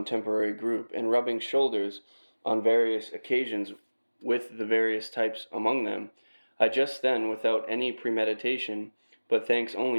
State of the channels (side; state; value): both; inverted; correlation -1.00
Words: group, and rubbing shoulders on various occasions with the various types among them, I just then, without any premeditation, but thanks